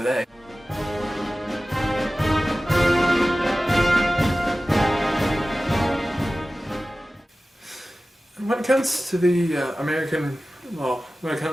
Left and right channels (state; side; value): normal; both; correlation 0.96